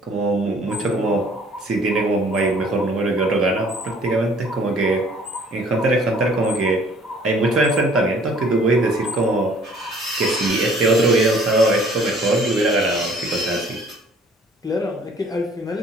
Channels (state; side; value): normal; both; correlation 0.56